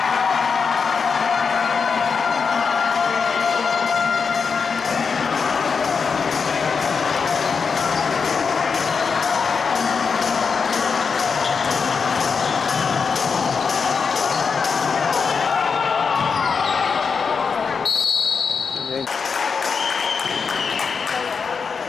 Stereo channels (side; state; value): right; quieter; 5.6 dB